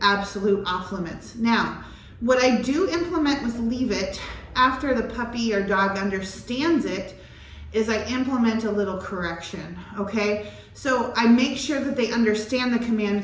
absolute off limits. Now, what I do implement with leave it after the puppy or dog understands it is I implement a little correction, okay? So I make sure that they understand the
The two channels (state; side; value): identical; both; correlation 1.00